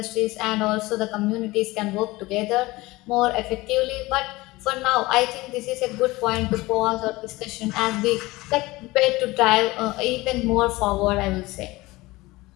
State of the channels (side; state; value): right; quieter; 20.5 dB